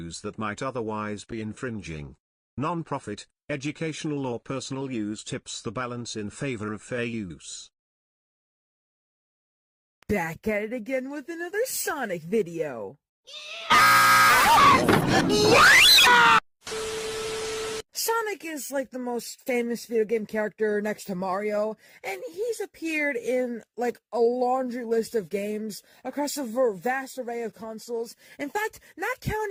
that might otherwise be infringing. Non-profit, educational or personal use tips the balance in favor of fair use. Back at it again with another Sonic video. Sonic is like the most famous video game character next to Mario, and he's appeared in like a laundry list of games across a vast array of consoles. In fact, not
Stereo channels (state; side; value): identical; both; correlation 1.00